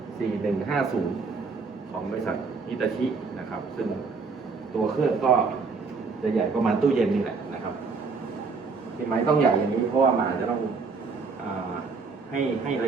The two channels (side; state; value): left; quieter; 4.6 dB